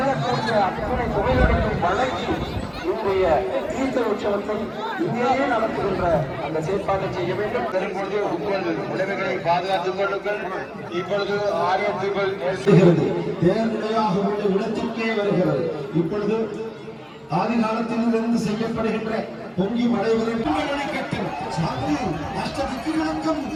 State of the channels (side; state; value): both; identical; correlation 1.00